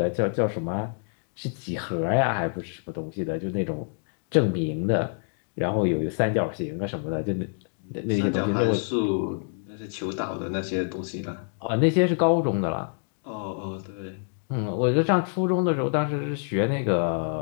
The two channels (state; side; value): silent; right; 59 dB below the other